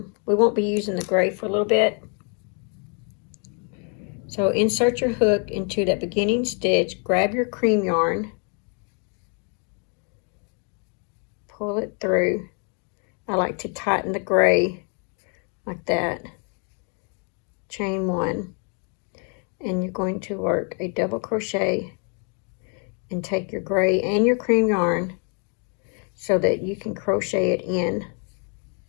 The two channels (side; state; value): right; quieter; 39.5 dB